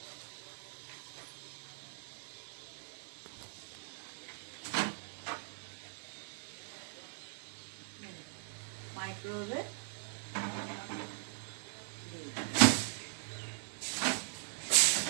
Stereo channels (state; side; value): silent; left; 51 dB below the other